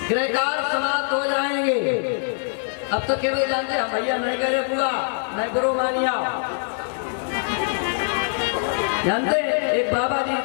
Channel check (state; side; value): silent; right; 63 dB below the other